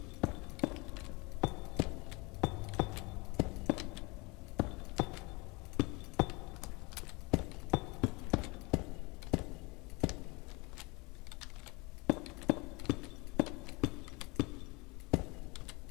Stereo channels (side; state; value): right; quieter; 26.5 dB